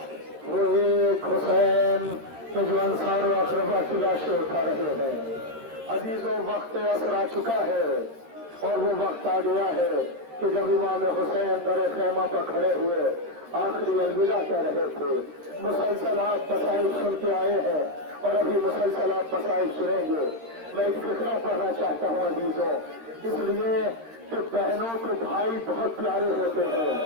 वो एक हुसैन के जो अंसार व अक़रबा की लाशें उठा रहे हैं। अजीजों, वक्त असर आ चुका है और वो वक्त आ गया है कि जब इमाम हुसैन दर खैमा पर खड़े हुए आखिरी अलविदा कह रहे थे। मुसलसल आप मसाइब सुन के आए हैं और अभी मुसलसल आप मसाइब सुनेंगे। मैं एक फिक्रा पढ़ना चाहता हूँ अजीजों, इसलिए कि बहनों को भाई बहुत प्यारे होते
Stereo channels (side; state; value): left; late; 13 ms